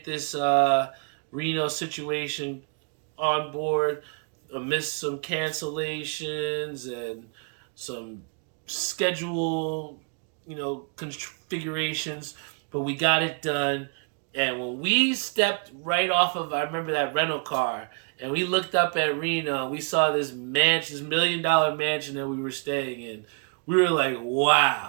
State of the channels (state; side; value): quieter; left; 39.8 dB